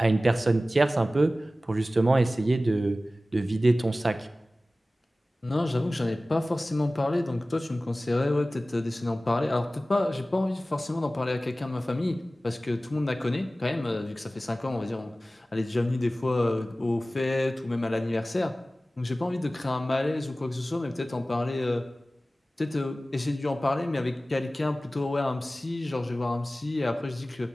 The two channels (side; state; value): both; normal; correlation 0.96